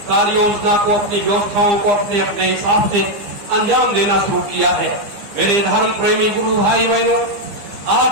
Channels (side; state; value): left; late; 15 ms